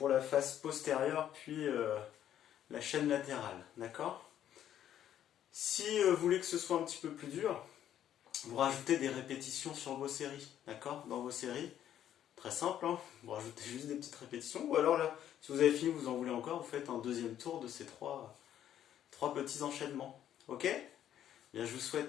la face postérieure, puis la chaîne latérale. D'accord ? Si vous voulez que ce soit un petit peu plus dur, vous rajoutez des répétitions sur vos séries. D'accord ? Dans vos séries, très simple, vous rajoutez juste des petites répétitions. Ou alors là, si vous avez fini, vous en voulez encore, vous faites un deuxième tour de ces trois petits enchaînements. Ok ? Bien, je vous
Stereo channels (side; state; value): right; quieter; 10.8 dB